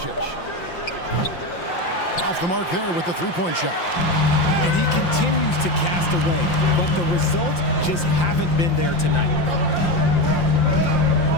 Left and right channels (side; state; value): right; late; 5.7 ms